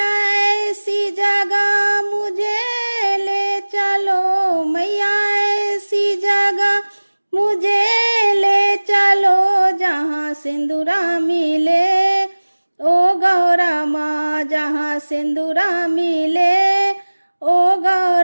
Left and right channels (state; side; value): inverted; both; correlation -1.00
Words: ऐसी जगह मुझे ले चलो, मैया ऐसी जगह मुझे ले चलो, जहाँ सिंदूरा मिले ओ गौरा माँ, जहाँ सिंदूरा मिले ओ